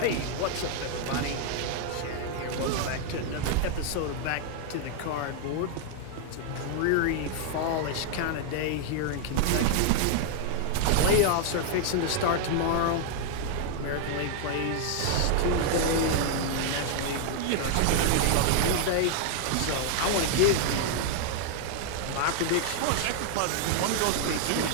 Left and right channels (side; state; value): both; different; correlation 0.00